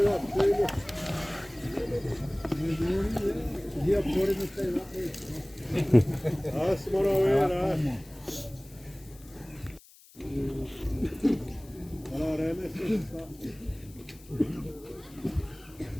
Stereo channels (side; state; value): left; noise; hiss, 24 dB below the sound